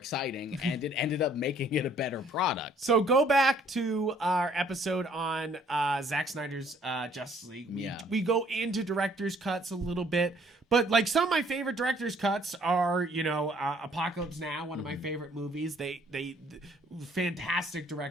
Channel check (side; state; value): both; normal; correlation 0.61